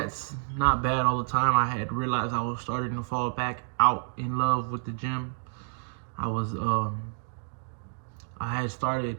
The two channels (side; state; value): left; silent; 56 dB below the other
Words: not bad all the time. I had realized I was starting to fall back out in love with the gym. I had started